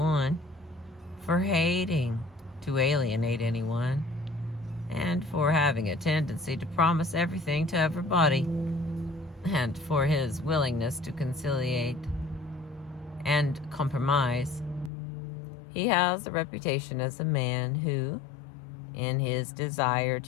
for hating to alienate anyone, and for having a tendency to promise everything to everybody, and for his willingness to conciliate and compromise. He has a reputation as a man who, in his desire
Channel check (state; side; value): drops out; right; at 14.9 s